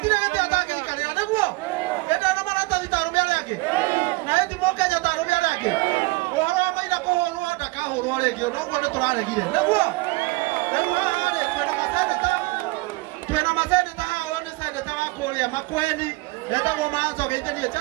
gĩtĩ atangĩikarĩra nĩguo ĩndĩ na maratathi ta arũme arĩa angĩ na ĩthi rĩngĩ ũguo nĩ tũraregire nĩguo rĩu haha rĩ twĩna maseneta haha ũyũ nĩ seneta wa kũrĩa Makueni etagwo Manzo Gĩithĩrie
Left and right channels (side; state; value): left; quieter; 24.2 dB